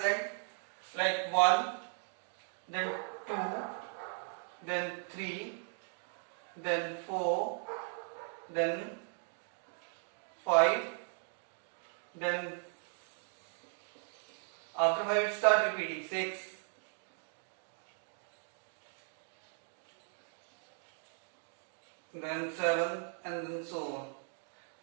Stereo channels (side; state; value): left; silent; 53 dB below the other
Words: Like 1, then 2, then 3, then 4, then 5, then after 5 it start repeating 6, then 7, and then so on.